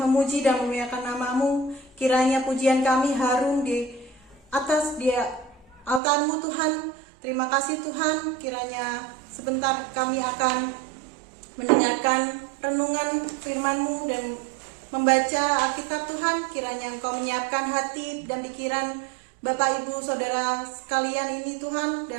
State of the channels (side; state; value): left; drops out; at 6.0 s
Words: memuji dan memuliakan namamu. Kiranya pujian kami harum di atas altarmu Tuhan. Terima kasih Tuhan, kiranya sebentar kami akan mendengarkan renungan firman-Mu dan membaca Alkitab Tuhan. Kiranya Engkau menyiapkan hati dan pikiran Bapak Ibu Saudara sekalian ini Tuhan